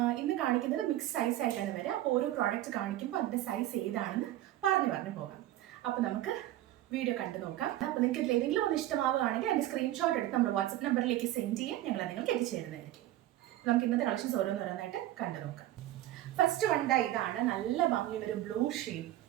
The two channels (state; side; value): quieter; left; 14.3 dB